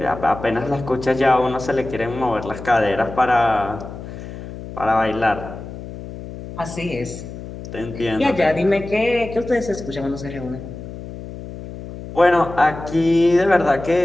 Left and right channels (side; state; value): left; noise; hum, 11 dB below the sound